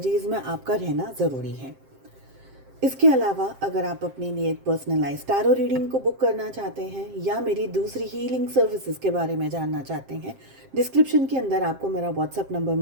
में आपका रहना ज़रूरी है। इसके अलावा अगर आप अपने लिए एक पर्सनलाइज टैरो रीडिंग को बुक करना चाहते हैं या मेरी दूसरी हीलिंग सर्विसेज के बारे में जानना चाहते हैं, डिस्क्रिप्शन के अंदर आपको मेरा व्हाट्सएप नंबर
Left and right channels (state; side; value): late; left; 7.6 ms